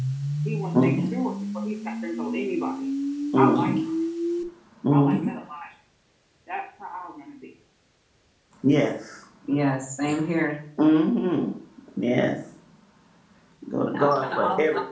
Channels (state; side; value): identical; both; correlation 1.00